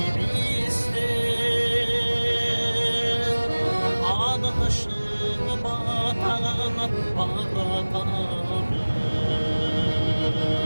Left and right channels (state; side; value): inverted; both; correlation -1.00